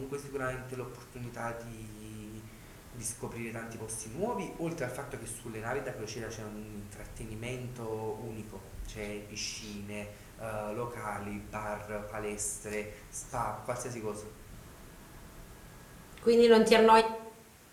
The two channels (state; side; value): identical; both; correlation 1.00